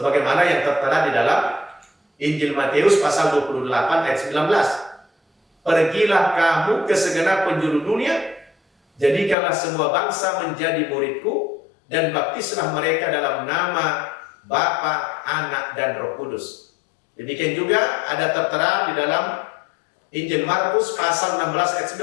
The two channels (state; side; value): drops out; right; at 9.3 s